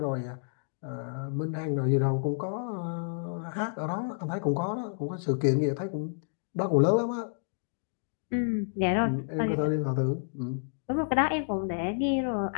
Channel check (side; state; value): right; silent; digital silence